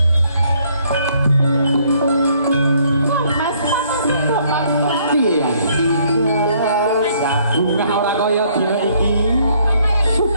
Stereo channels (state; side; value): inverted; both; correlation -0.66